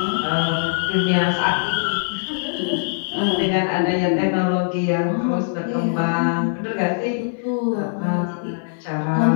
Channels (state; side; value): silent; right; 57 dB below the other